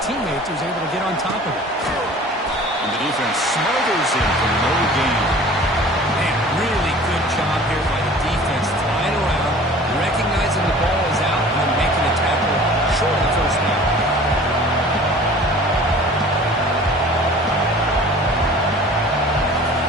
teammate who was able to get on top of it. And the defense smothers him for no gain. Really good job here by the defense, flying around, recognizing the ball is out, and then making a tackle short of the 1st down.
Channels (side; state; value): both; normal; correlation 0.45